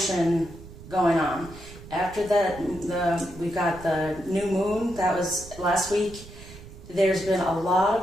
going on. After that, we got the new moon, that was last week. There's been a lot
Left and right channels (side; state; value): right; noise; rumble, 16 dB below the sound